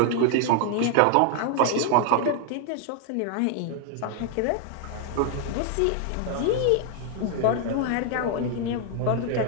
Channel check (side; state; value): both; different; correlation 0.00